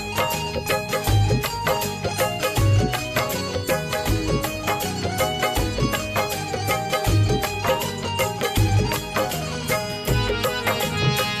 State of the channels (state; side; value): identical; both; correlation 1.00